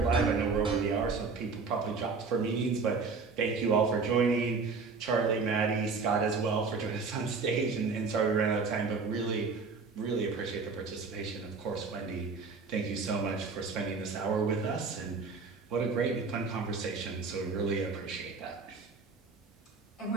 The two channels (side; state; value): left; quieter; 4.6 dB